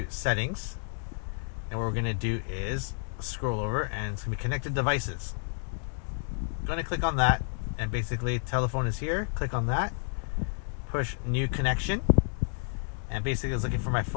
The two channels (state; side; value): silent; right; digital silence